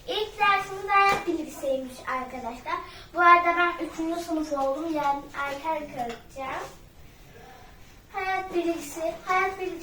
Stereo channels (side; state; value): both; identical; correlation 1.00